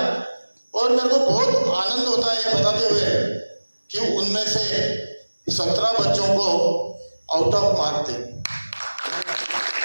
और मेरे को बहुत आनंद होता है ये बताते हुए कि उनमें से 17 बच्चों को आउट ऑफ मार्क थे।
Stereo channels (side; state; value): both; inverted; correlation -1.00